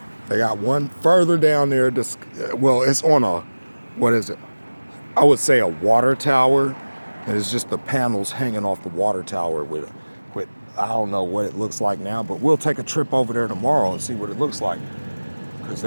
They got one further down there. Well, it's on a, what is it? I would say a water tower. And it's just the panels hanging off the water tower with I don't know what it looks like now, but we'll take a trip over there tomorrow and see what it looks like. Because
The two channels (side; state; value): both; inverted; correlation -1.00